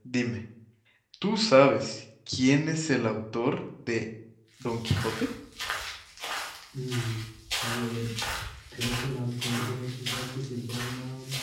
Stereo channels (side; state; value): both; identical; correlation 1.00